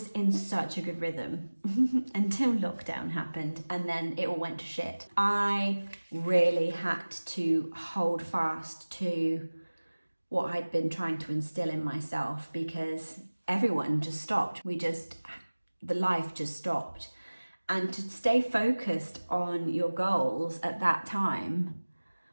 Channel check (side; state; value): both; inverted; correlation -1.00